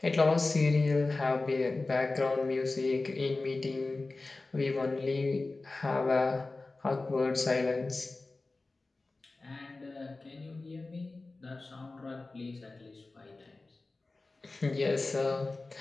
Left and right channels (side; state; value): right; quieter; 3.4 dB